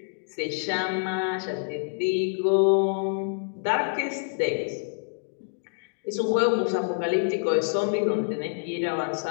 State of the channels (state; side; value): silent; right; digital silence